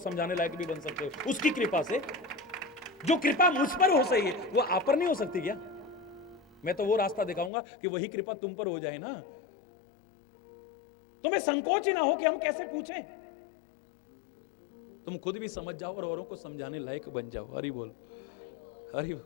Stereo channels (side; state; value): right; drops out; at 7.5 s